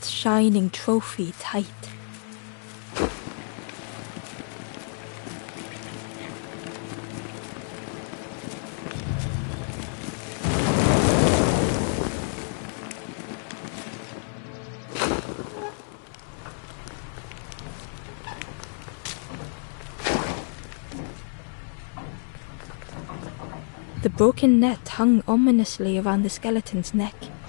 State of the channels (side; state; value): right; silent; 60 dB below the other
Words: shining trophy tight. The broken net hung ominously around the skeleton's neck.